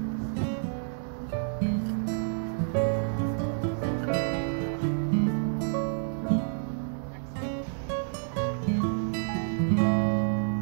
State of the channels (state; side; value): silent; left; digital silence